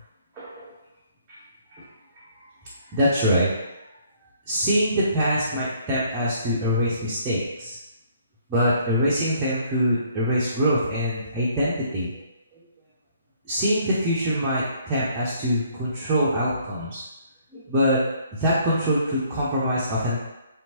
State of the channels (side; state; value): both; inverted; correlation -0.62